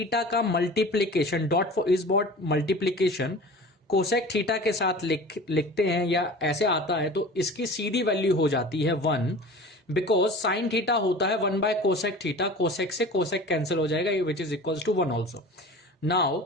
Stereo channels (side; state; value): both; normal; correlation 0.39